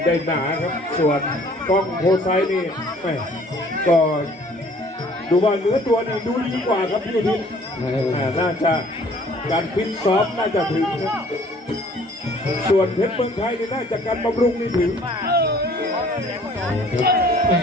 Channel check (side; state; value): both; normal; correlation 0.55